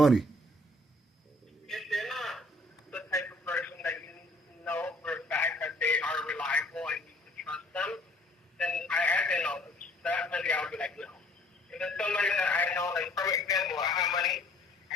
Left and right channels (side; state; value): both; normal; correlation 0.58